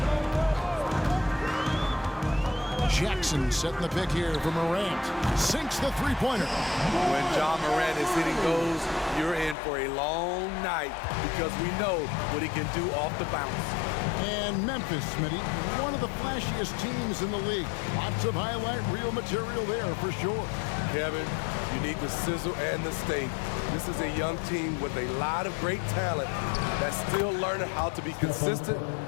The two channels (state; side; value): drops out; right; at 9.6 s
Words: Jackson setting the pick here for Morant. Sinks the three-pointer. When John Morant is hitting those, you're in for a long night because we know what he can do off the bounce. And Memphis, Smitty, one of the flashiest teams in the league. Lots of highlight reel material there for sure. Kevin, you need the sizzle and the steak. This is a young team with a lot of great talent that's still learning how to be consistent.